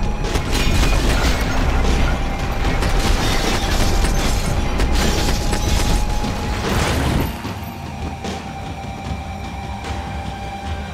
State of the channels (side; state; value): both; identical; correlation 1.00